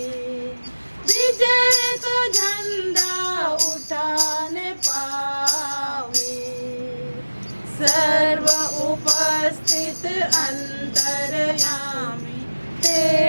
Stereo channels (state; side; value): inverted; both; correlation -1.00